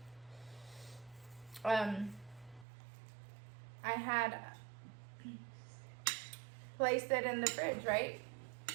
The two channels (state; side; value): drops out; left; at 2.7 s